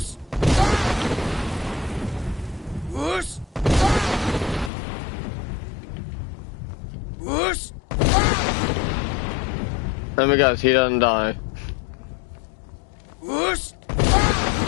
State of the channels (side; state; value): right; drops out; at 4.7 s